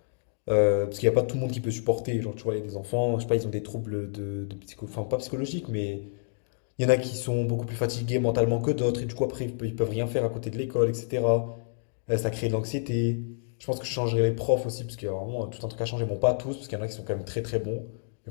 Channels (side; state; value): right; silent; digital silence